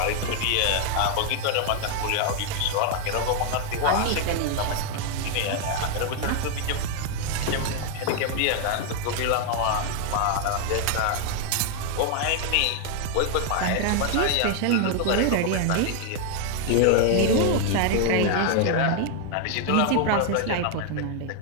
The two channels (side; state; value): both; different; correlation 0.00